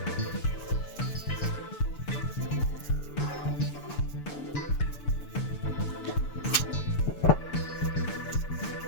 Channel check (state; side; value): late; right; 6.9 ms